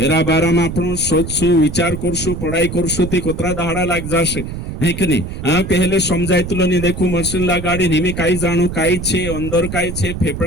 बारा में आपणो सोचसु विचार करसु पढ़ाई करसु ते कोतरा दाड़ा लाग जाशे है कि नहीं पहले समझायतलो नहीं देखो मशीन लगाड़ी निमे काई जाणु काई छे अंदर काई छे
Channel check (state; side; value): noise; right; rumble, 7 dB below the sound